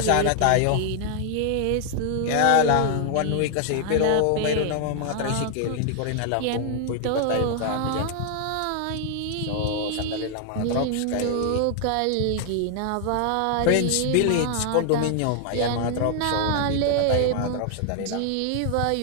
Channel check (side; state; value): both; different; correlation 0.00